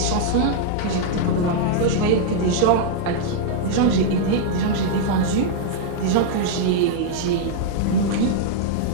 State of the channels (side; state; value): both; different; correlation -0.01